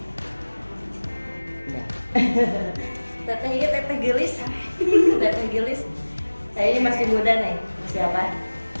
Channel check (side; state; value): both; inverted; correlation -1.00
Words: Udah. Teteh iya, Teteh Gelis. Teteh Gelis. Saya ini masih muda nih. Siapa?